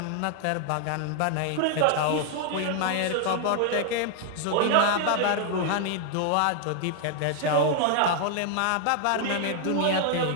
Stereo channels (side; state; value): both; different; correlation 0.00